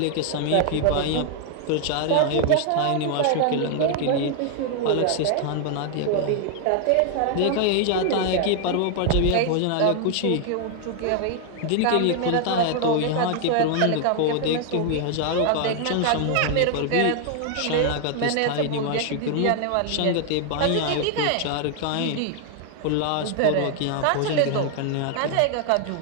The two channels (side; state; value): both; different; correlation 0.00